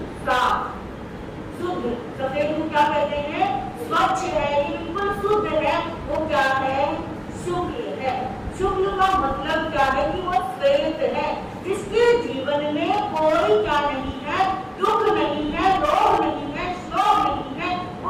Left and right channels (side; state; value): both; identical; correlation 1.00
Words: साफ, शुद्ध। सफेद को क्या कहते हैं? स्वच्छ है, ये बिल्कुल शुद्ध है, वो क्या है? शुक्ल है। शुक्ल का मतलब क्या है कि वो श्वेत है, जिसके जीवन में कोई क्या नहीं है? दुख नहीं है, रोग नहीं है, शोक नहीं है,